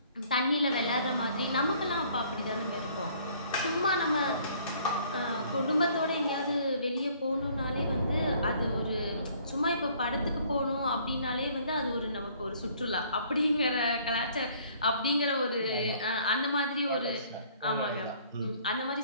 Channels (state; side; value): inverted; both; correlation -0.59